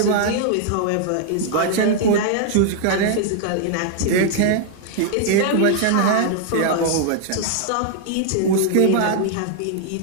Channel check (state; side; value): different; both; correlation 0.00